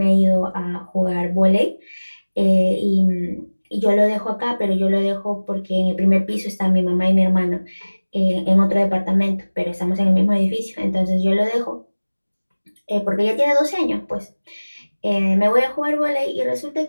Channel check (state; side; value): inverted; both; correlation -1.00